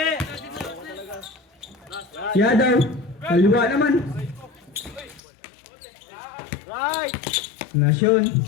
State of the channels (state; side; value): drops out; right; at 5.2 s